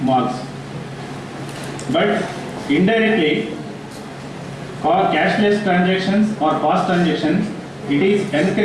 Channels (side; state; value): both; identical; correlation 1.00